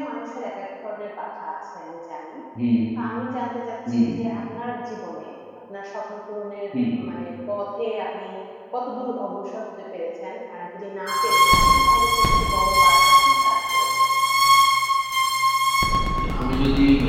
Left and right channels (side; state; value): both; identical; correlation 1.00